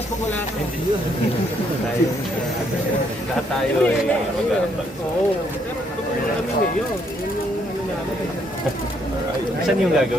pag wala ka. Lahat tayo ay mag-aambag. Oo. Pero kami ngayon. Yun yung ano namin. Saan yung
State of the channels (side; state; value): both; normal; correlation 0.70